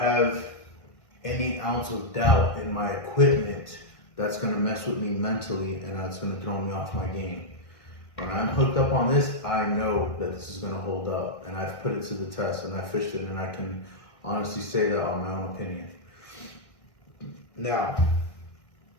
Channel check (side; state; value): right; late; 1.6 ms